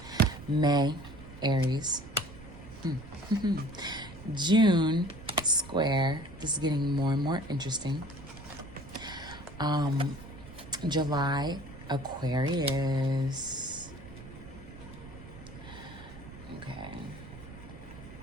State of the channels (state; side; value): noise; right; rumble, 16 dB below the sound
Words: May, Aries. June, square. This is getting more and more interesting. July, Aquarius. Okay.